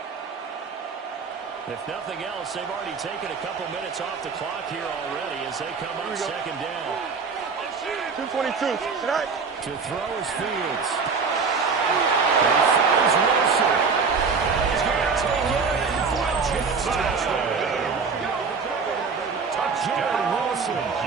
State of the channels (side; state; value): left; quieter; 5.1 dB